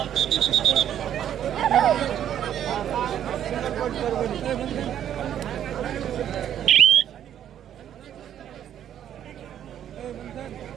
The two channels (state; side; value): quieter; left; 10.2 dB